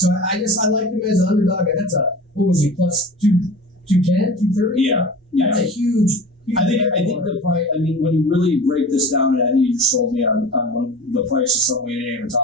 I like him as an underdog. And that's what was he, plus 210, 230? Yeah. That's a huge I think the price. I mean, when you really break this down, and I think you just told me on the price of something we didn't even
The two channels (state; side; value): normal; both; correlation 0.36